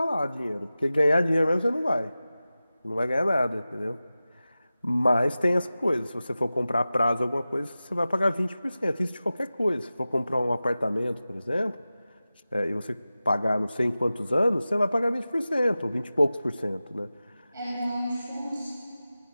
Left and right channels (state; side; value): inverted; both; correlation -0.95